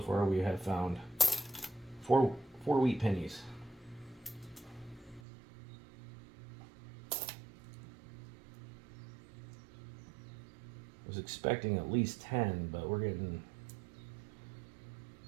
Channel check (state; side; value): drops out; left; at 5.2 s